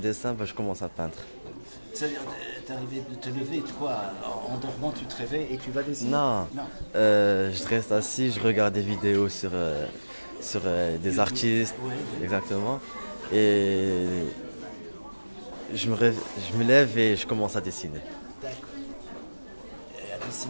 je commence à peindre. C'est-à-dire, t'es arrivé de te lever, quoi, en dormant, tu te réveilles et tu vas dessiner? Non, je reste assis, je regarde des vidéos sur des artistes, Ouais. exactement. Et je me lève et je commence à dessiner. D'accord. Et à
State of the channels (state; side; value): inverted; both; correlation -1.00